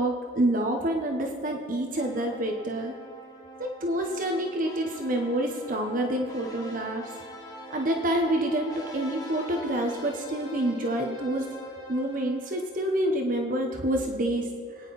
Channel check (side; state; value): both; normal; correlation 0.50